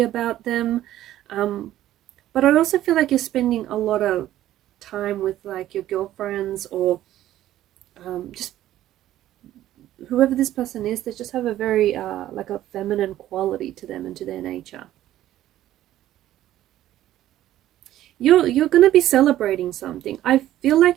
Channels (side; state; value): left; quieter; 13.3 dB